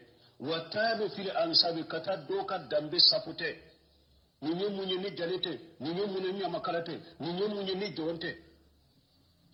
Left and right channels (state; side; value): identical; both; correlation 1.00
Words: watalu fil ansab kata doka dambe sapute ninye munye ni jalete ninye munye ni makalate ninye munye ni jonte